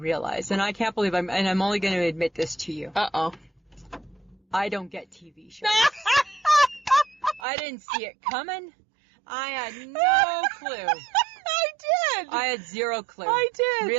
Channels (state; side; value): drops out; left; at 7.5 s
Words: and I can't believe I'm only going to admit this to you. I don't get TV shows. I didn't see it coming. I had no clue. I did. I had zero clue. I did.